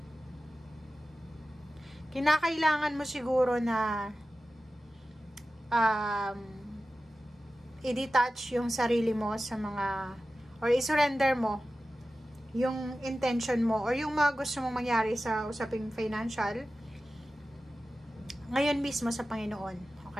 Kinakailangan mo siguro na i-detach yung sarili mo sa mga, or i-surrender mo yung intention mo, or yung mga gusto mong mangyari sa usaping financial, ngayon mismo sa Panginoon.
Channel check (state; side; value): normal; both; correlation 0.94